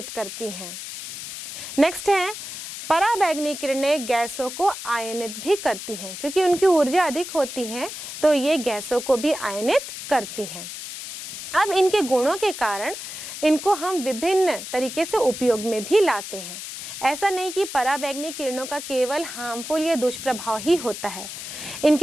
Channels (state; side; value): noise; left; hiss, 9 dB below the sound